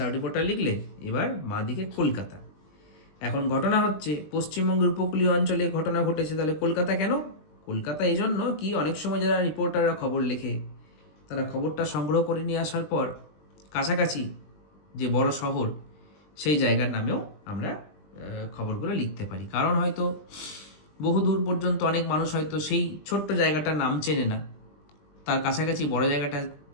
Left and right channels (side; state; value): right; late; 20 ms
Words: রিপোর্টার লিখলে, এবার মা দিকে কলকাতা। এখন ঘটনা হচ্ছে পশ্চিমবঙ্গের উপকূলীয় অঞ্চলে ঘটনা ঘটেছে, তাহলে কলকাতা কেন? কলকাতা এই জন্য কি, অনেক সময় যারা রিপোর্টাররা খবর লেখে তারা খবরটা সংগ্রহ করে নিয়ে আসার পর কাছাকাছি যে বড় শহর সেই জায়গার নামেও আমরা খবরগুলো লিখতে পারি। কারণ হয়তো বহু দূর পর্যন্ত অনেক মানুষ হয়তো সেই ছোট্ট জায়গাটার নাম চেনে না, তার কাছাকাছি বড় জায়গাটা